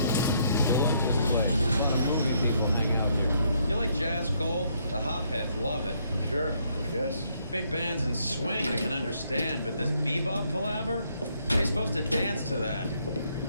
The hopheads love it. Sure, I guess. Big bands and swing I can understand, but this bebop palaver? They're supposed to dance to that.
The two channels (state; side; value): inverted; both; correlation -0.71